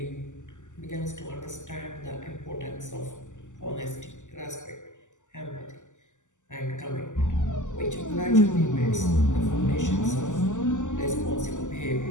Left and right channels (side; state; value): right; late; 0.86 ms